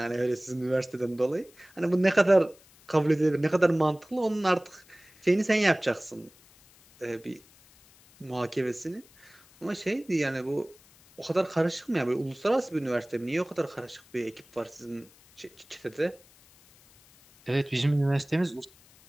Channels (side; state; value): left; noise; hiss, 27 dB below the sound